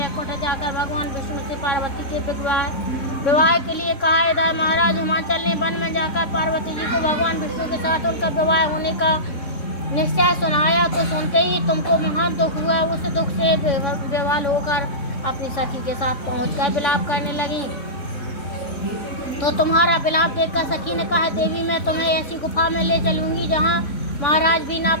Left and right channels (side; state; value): right; late; 3.6 ms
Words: जाकर भगवान विष्णु से पार्वती के विवाह के लिए कहा। इधर महाराज हिमाचल ने वन में जाकर पार्वती जी को भगवान विष्णु के साथ उनका विवाह होने का निश्चय सुनाया तो सुनते ही तुमको महान दुख हुआ। उस दुख से विवाह होकर अपनी सखी के साथ पहुंचकर विलाप करने लगी। तो तुम्हारा विलाप देखकर सखी ने कहा, देवी, मैं तुम्हें ऐसी गुफा में ले चलूंगी जहाँ महाराज भी ना